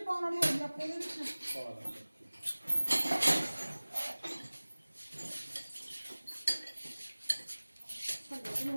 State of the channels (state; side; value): inverted; both; correlation -1.00